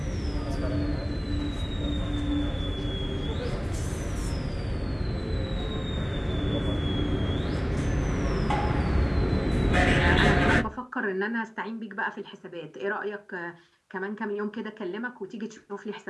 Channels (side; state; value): both; identical; correlation 1.00